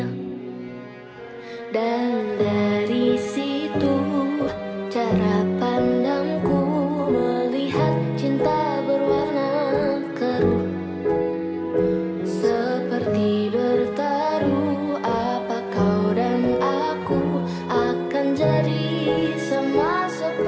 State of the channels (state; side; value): identical; both; correlation 1.00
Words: Dan dari situ cara pandangku melihat cinta berwarna keruh, seperti bertaruh. Apa kau dan aku akan jadi sama